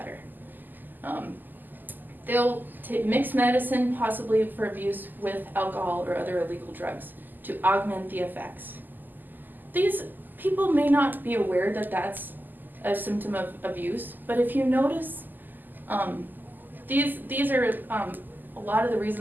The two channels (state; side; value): late; left; 0.087 ms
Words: They'll mix medicine, possibly for abuse, with alcohol or other illegal drugs to augment the effects. These people may not be aware that that's a symptom of abuse, but if you notice, these are a lot of the